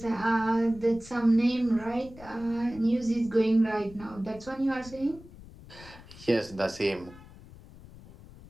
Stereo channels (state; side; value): noise; left; rumble, 19 dB below the sound